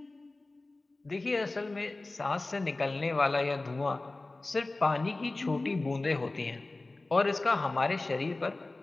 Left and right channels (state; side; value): quieter; right; 3.1 dB